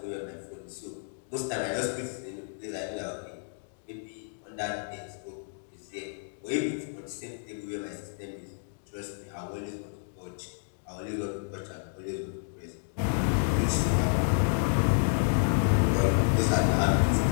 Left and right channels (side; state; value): right; silent; digital silence